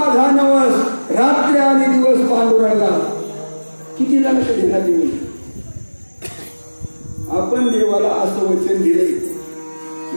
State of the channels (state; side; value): inverted; both; correlation -1.00